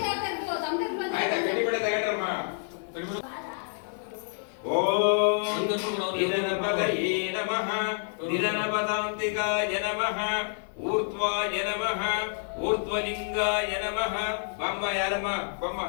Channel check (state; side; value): silent; right; 59 dB below the other